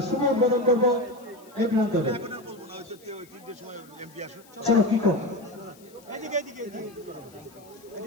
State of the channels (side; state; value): left; noise; hiss, 26 dB below the sound